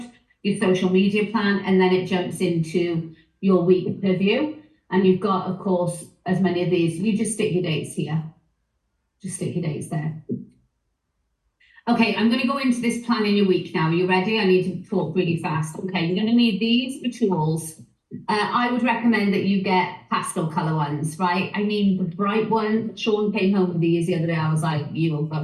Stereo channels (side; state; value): both; identical; correlation 1.00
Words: your social media plan, and then it jumps into your week review. And you've got, of course, as many of these. You just stick your dates here. Just stick your dates there. Okay, I'm going to go into this plan in your week now. Are you ready? I need to talk really fast. Okay, you're going to need these for tools. I would recommend that you get pastel color ones, right? I mean, the bright one, Sean came home with these the other day. I was like, you will